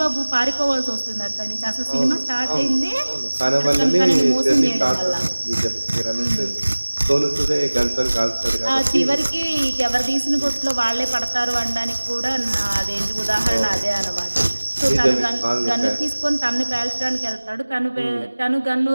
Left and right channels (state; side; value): inverted; both; correlation -1.00